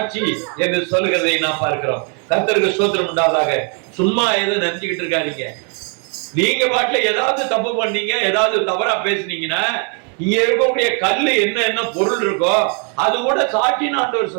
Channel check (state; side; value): quieter; left; 40.0 dB